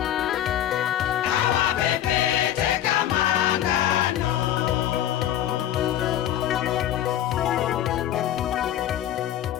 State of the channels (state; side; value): quieter; right; 11.6 dB